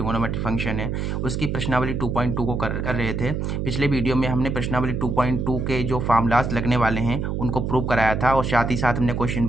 फंक्शन है उसकी प्रश्नावली 2.2 को कर रहे थे। पिछले वीडियो में हमने प्रश्नावली 2.2 के जो फार्मूलाज लगने वाले हैं उनको प्रूव कराया था और साथ ही साथ हमने क्वेश्चन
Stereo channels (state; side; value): noise; right; hum, 2 dB below the sound